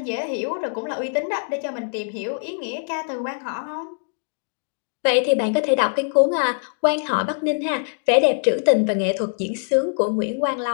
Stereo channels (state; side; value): silent; right; digital silence